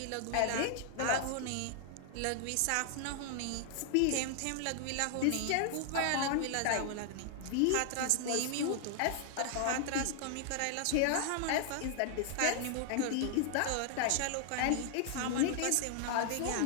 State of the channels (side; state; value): both; different; correlation 0.00